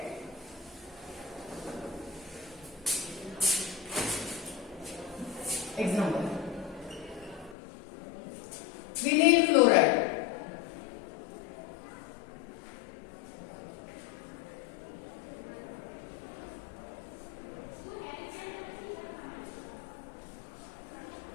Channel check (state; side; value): drops out; right; at 7.6 s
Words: Example. Vinyl chloride.